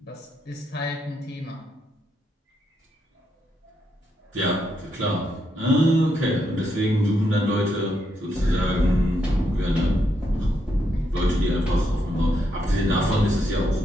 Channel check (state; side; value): normal; both; correlation 0.79